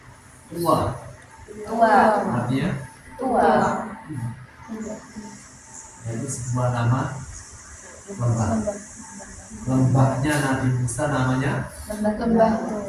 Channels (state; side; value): identical; both; correlation 1.00